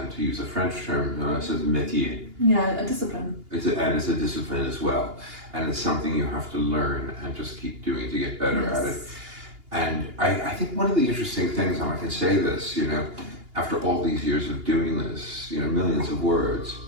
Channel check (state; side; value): late; left; 2.8 ms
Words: to use a French term, it's a métier. Yeah, a discipline. It's a discipline as well, and it's something you have to learn and just keep doing to get better at it. And I think one of the interesting things, and I can say this, after all these years of doing this, millions of words,